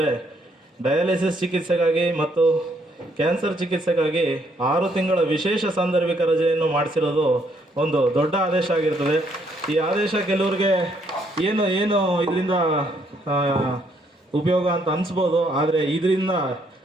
ಡಯಾಲಿಸಿಸ್ ಚಿಕಿತ್ಸೆಗಾಗಿ ಮತ್ತು ಕ್ಯಾನ್ಸರ್ ಚಿಕಿತ್ಸೆಗಾಗಿ 6 ತಿಂಗಳ ವಿಶೇಷ ಸಾಂದರ್ಭಿಕ ರಜೆಯನ್ನು ಮಾಡಿಸಿರೋದು ಒಂದು ದೊಡ್ಡ ಆದೇಶ ಆಗಿರ್ತದೆ. ಈ ಆದೇಶ ಕೆಲವ್ರಿಗೆ ಏನು ಇದರಿಂದ ಉಪಯೋಗ ಅಂತ ಅನಿಸ್ಬೋದು, ಆದರೆ ಇದರಿಂದ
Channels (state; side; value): normal; both; correlation 0.70